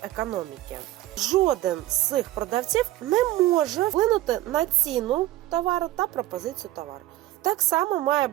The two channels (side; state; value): left; quieter; 15.5 dB